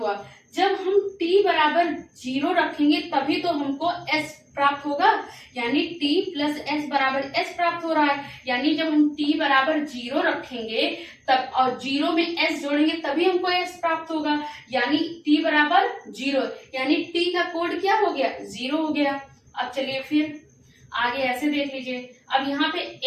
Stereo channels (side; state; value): both; identical; correlation 1.00